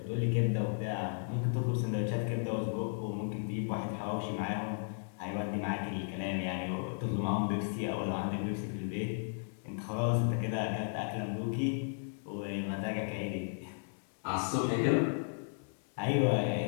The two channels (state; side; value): silent; right; 55 dB below the other